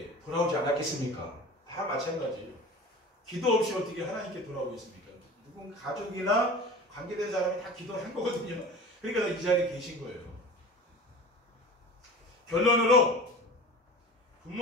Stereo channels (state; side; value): normal; both; correlation 0.37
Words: 돌아오지 않았겠습니까? 다 마찬가지예요. 기도 없이 어떻게 하나님께 돌아오겠습니까? 누군 가족이나 관계된 사람이 다 기도한 거거든요. 그러니까 이 자리에 계신 거예요. 결론으로